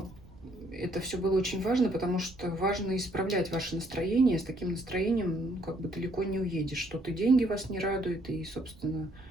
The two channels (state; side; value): noise; right; rumble, 21 dB below the sound